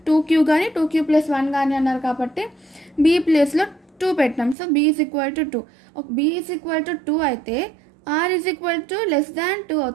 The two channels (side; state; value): left; drops out; at 4.5 s